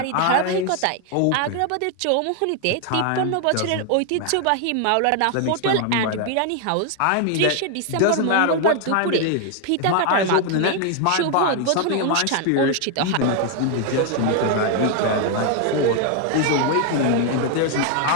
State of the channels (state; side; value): different; both; correlation 0.00